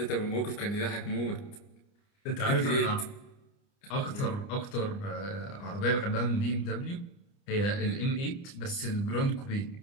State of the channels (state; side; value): late; right; 29 ms